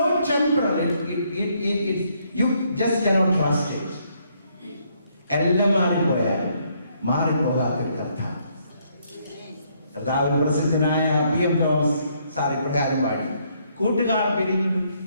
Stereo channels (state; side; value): inverted; both; correlation -0.71